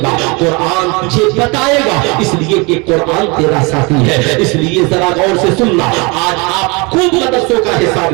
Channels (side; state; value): left; quieter; 28.6 dB